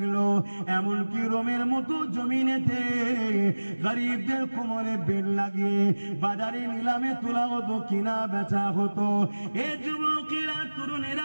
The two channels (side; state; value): both; inverted; correlation -1.00